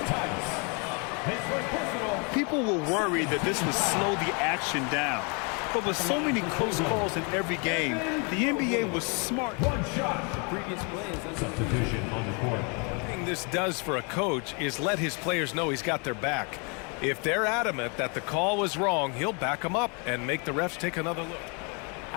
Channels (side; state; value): right; quieter; 34.0 dB